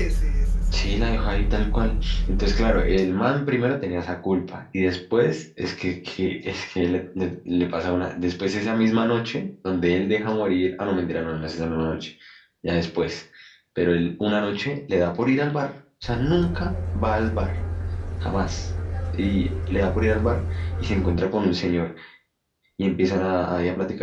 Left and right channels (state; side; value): identical; both; correlation 1.00